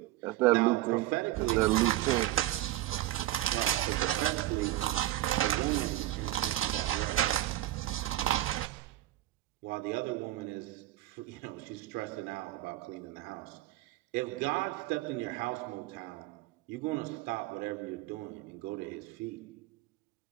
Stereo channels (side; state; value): left; quieter; 15.3 dB